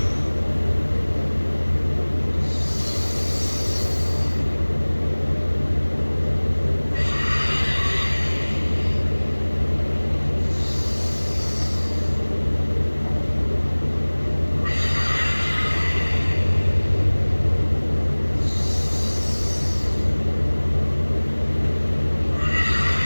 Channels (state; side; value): inverted; both; correlation -1.00